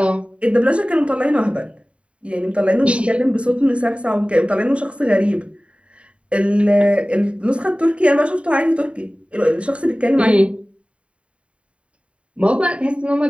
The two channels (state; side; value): late; left; 0.060 ms